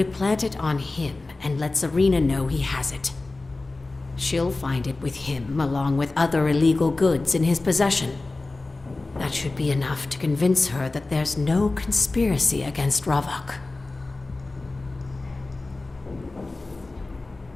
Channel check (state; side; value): quieter; right; 3.2 dB